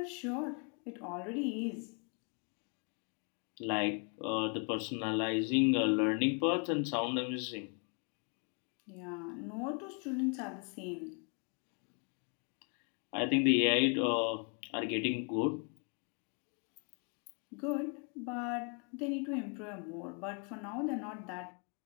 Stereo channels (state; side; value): quieter; right; 38.5 dB